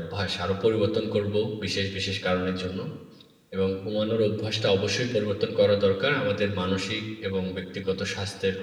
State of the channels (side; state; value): both; identical; correlation 1.00